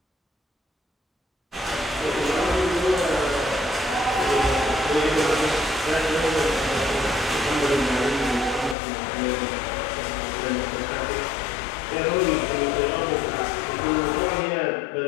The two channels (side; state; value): right; drops out; at 8.8 s